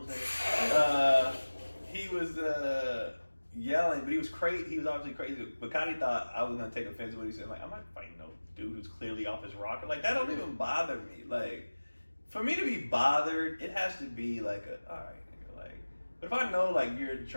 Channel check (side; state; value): both; inverted; correlation -1.00